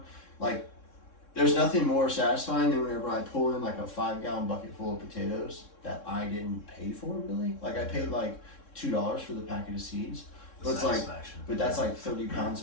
like there's nothing more satisfying than whenever I pull in like a 5-gallon bucket full of potatoes that I didn't pay for really. Like I paid like $2 for the packet of seeds, but it's like, but that's like 30 pounds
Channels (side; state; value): right; late; 3.7 ms